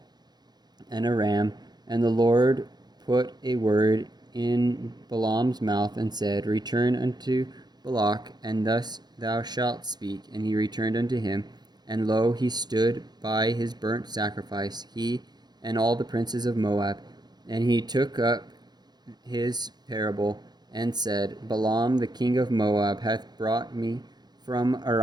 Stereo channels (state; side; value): late; left; 0.20 ms